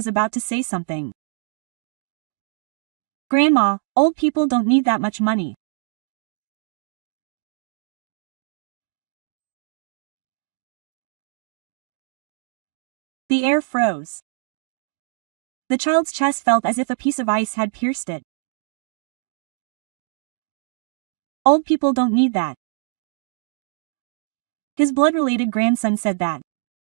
about to say something. "Grandma, old people don't need that much money." The air froze. The child's chest felt as if a piece of ice had pierced it. "Old people don't need that." His blood-related grandson said that.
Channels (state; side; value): silent; left; digital silence